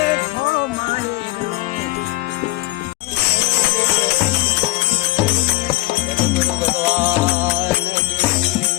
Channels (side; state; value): right; quieter; 19.6 dB